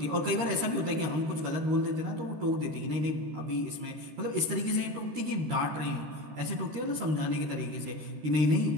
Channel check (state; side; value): late; left; 13 ms